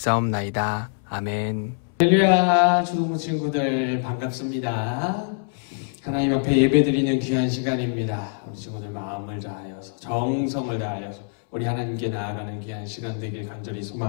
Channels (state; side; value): silent; right; 62 dB below the other